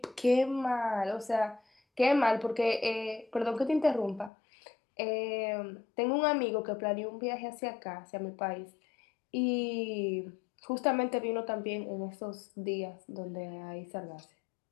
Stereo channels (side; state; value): right; drops out; at 4.3 s